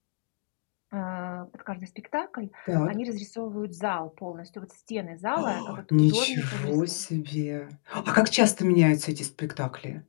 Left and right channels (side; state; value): right; silent; digital silence